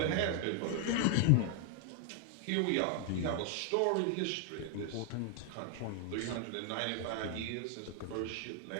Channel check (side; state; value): both; different; correlation 0.00